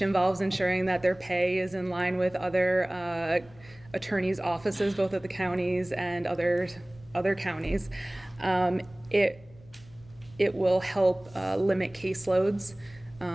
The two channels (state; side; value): noise; left; hum, 24 dB below the sound